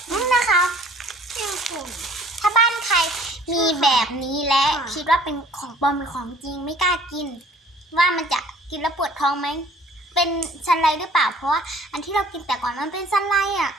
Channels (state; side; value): normal; both; correlation 0.53